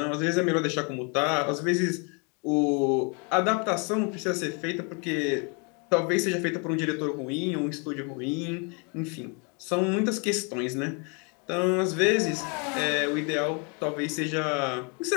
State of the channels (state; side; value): quieter; right; 34.5 dB